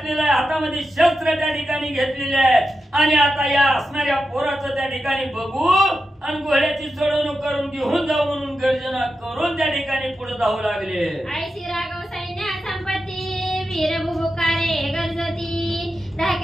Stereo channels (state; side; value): normal; both; correlation 0.89